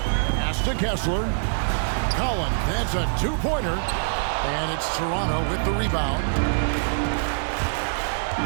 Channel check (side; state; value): left; silent; digital silence